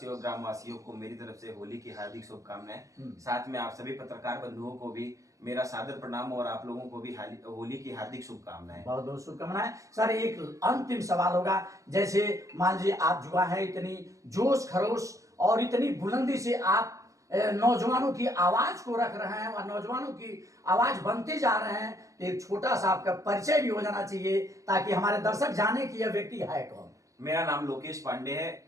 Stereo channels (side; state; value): left; late; 0.16 ms